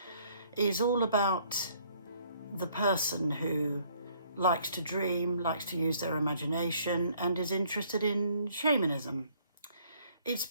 is all about the person who likes to dream, likes to use their imagination, and is interested in shamanism. It's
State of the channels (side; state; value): both; inverted; correlation -0.63